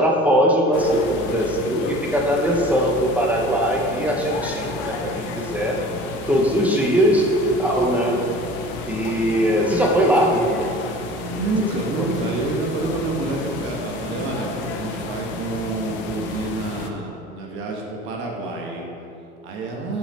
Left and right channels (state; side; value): normal; both; correlation 0.43